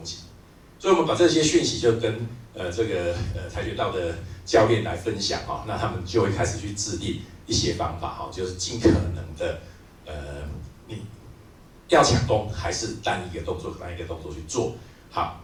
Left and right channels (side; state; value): both; identical; correlation 1.00